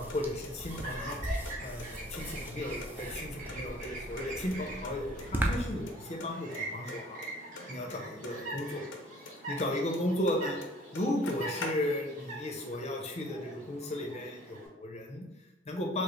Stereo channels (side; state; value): both; normal; correlation 0.53